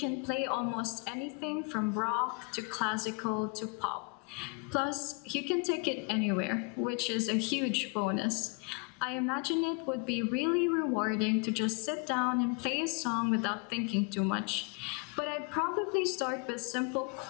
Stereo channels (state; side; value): quieter; right; 32.7 dB